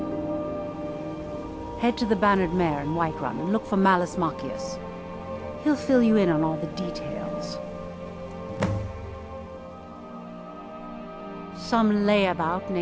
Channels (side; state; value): both; identical; correlation 1.00